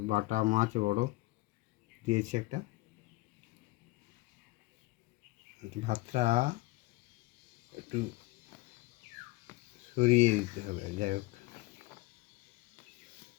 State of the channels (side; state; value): right; quieter; 20.6 dB